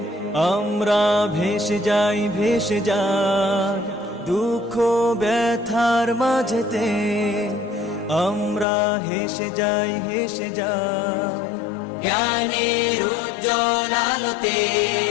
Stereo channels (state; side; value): drops out; right; at 8.7 s